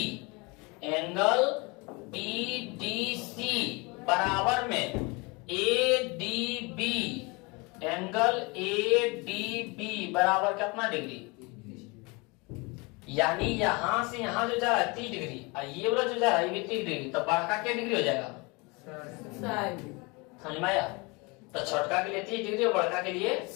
एंगल BDC बराबर में ADB एंगल ADB बराबर कितना डिग्री? यानी यहां से यहां जो जा रहा है 30 डिग्री और ये वाला जो जा रहा है ये 30 डिग्री, तो बड़का क्या डिग्री हो जाएगा? समझ में आया? तो छोटका के लिए 30 डिग्री और बड़का के लिए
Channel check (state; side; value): quieter; right; 27.3 dB